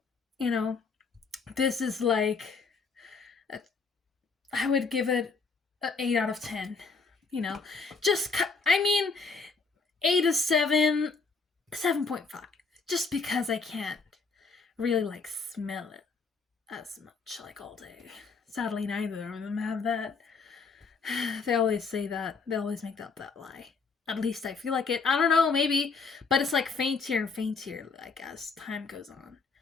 You know, this is like, I would give it an 8 out of 10. You know, just, I mean, 8 to 7, 7.5. Just because I can't really, like, smell it as much, like, all day. Sadly, neither of them have that. They always say that. They always make up that lie. At least I feel like it. I don't know, maybe. But it's, like, faintier and faintier, like, as time goes on.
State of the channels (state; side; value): quieter; right; 4.6 dB